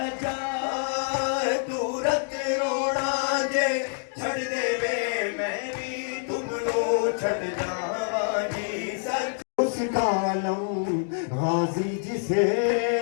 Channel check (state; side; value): silent; right; digital silence